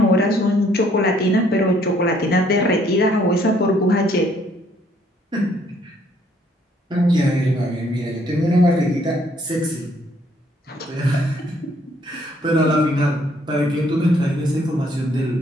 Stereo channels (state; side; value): normal; both; correlation 0.65